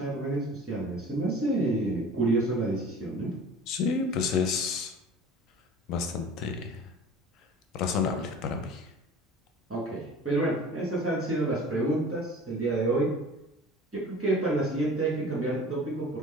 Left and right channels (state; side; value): normal; both; correlation 0.43